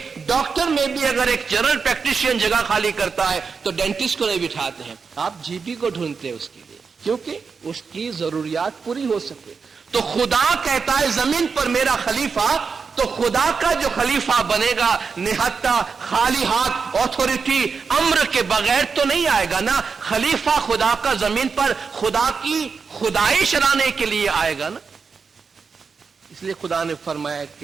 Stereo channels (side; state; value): left; quieter; 5.3 dB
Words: डॉक्टर में भी अगर एक जनरल प्रैक्टिशियन जगह खाली करता है तो डेंटिस्ट को नहीं बिठाते हैं, आप जीपी को ढूंढते हैं उसके लिए, क्योंकि उसकी जरूरियात पूरी हो सके। तो खुदा कहता है जमीन पर मेरा खलीफा, तो खुदा का जो खलीफा बनेगा निहत्ता खाली हाथ अथॉरिटी अम्र के बगैर तो नहीं आएगा ना। खलीफा खुदा का जमीन पर खुदा की खुदाई चलाने के लिए आएगा ना। इसलिए खुदा ने फरमाया